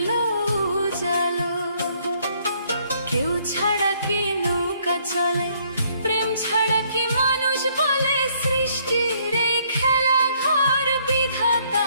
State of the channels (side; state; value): both; inverted; correlation -0.66